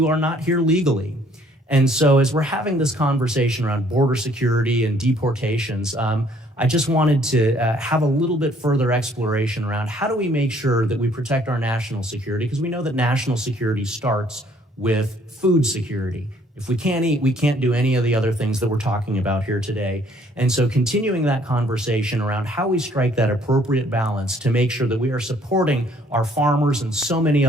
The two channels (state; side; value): normal; both; correlation 0.62